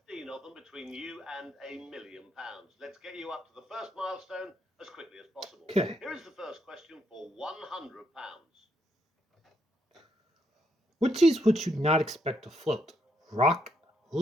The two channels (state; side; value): normal; both; correlation 0.77